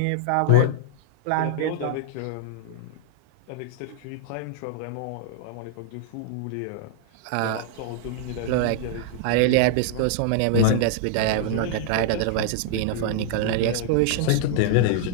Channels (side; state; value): both; different; correlation -0.01